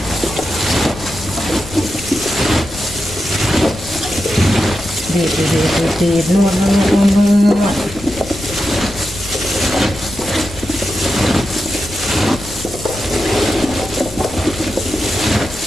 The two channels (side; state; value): left; noise; rumble, 14 dB below the sound